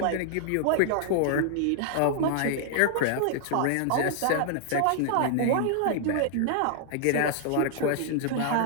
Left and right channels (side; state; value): both; different; correlation -0.01